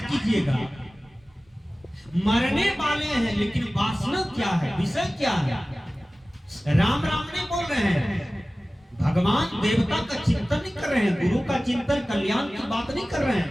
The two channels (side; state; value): both; normal; correlation 0.97